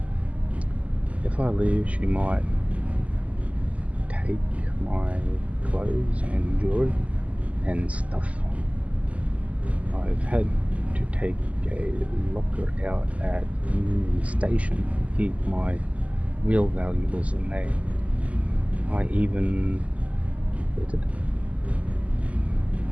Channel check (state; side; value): late; left; 0.069 ms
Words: If I leave, she might take my clothes and jewelry and stuff. I've had to take a locker out at Union Station to keep my real valuables in there. I even